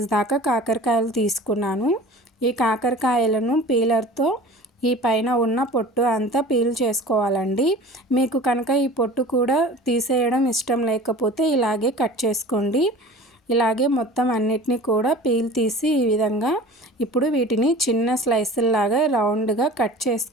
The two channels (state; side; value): normal; both; correlation 0.40